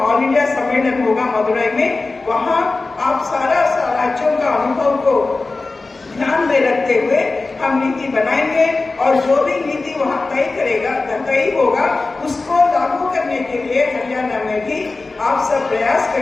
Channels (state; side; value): quieter; right; 3.6 dB